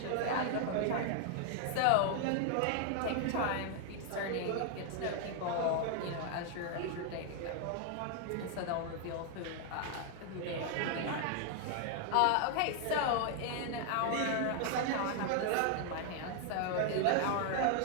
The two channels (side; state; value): both; different; correlation 0.00